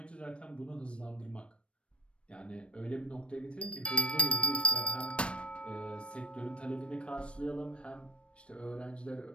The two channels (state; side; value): late; right; 0.059 ms